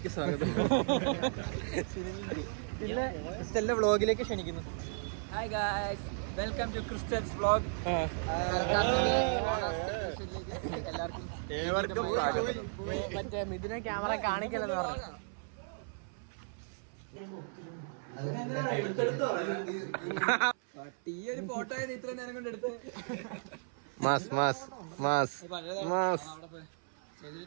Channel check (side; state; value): left; silent; 55 dB below the other